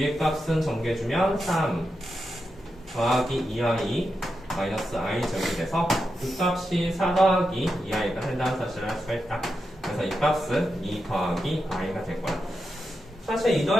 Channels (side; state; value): both; normal; correlation 0.87